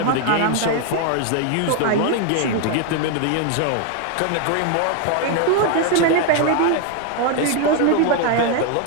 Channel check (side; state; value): both; different; correlation 0.00